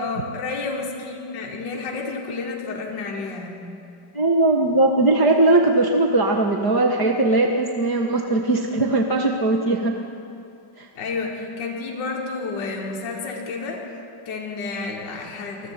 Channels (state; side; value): late; right; 5.1 ms